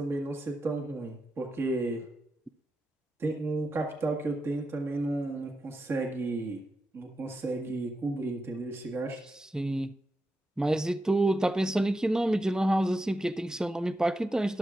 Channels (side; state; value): both; normal; correlation 0.88